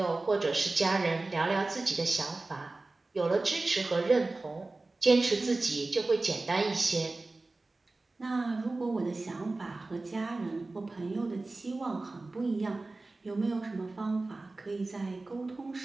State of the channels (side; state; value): left; quieter; 3.3 dB